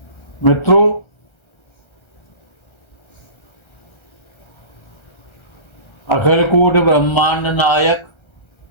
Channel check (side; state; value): right; late; 1.3 ms